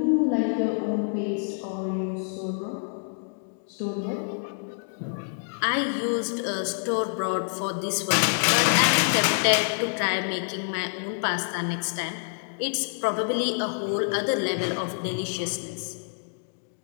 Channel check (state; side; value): silent; right; digital silence